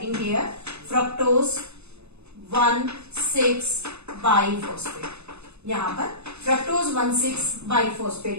here fructose 1,6-biphosphate. यहाँ पर fructose 1,6-biphosphate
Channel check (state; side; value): late; left; 0.80 ms